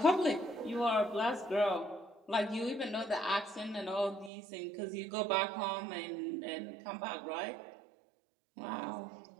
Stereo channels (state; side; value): drops out; left; at 4.3 s